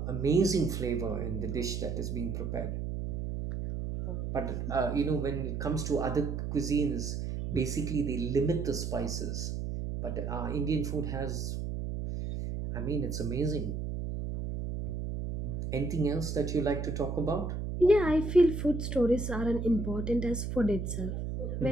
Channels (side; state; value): right; noise; hum, 4 dB below the sound